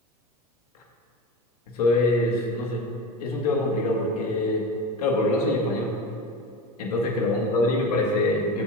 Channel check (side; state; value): both; normal; correlation 0.28